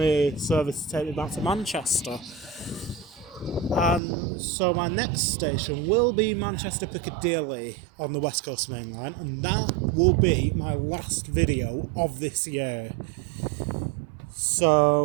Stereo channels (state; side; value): drops out; left; at 4.0 s